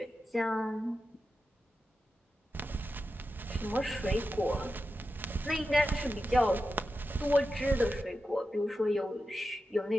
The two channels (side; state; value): both; normal; correlation 0.91